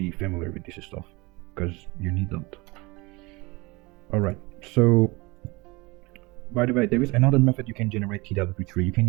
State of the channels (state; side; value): quieter; left; 24.4 dB